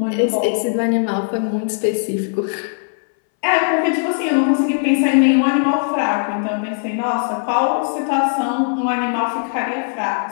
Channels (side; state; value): right; silent; 63 dB below the other